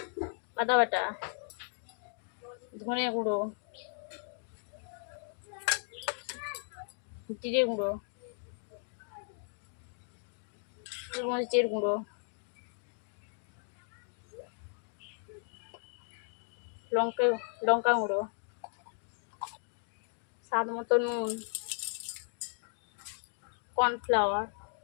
আদা বাটা, ধনে গুঁড়ো, জিরে গুঁড়ো, গোলমরিচের গুঁড়ো, লঙ্কা গুঁড়ো, স্বাদ মতো নুন, কর্নফ্লাওয়ার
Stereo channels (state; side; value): silent; right; 54 dB below the other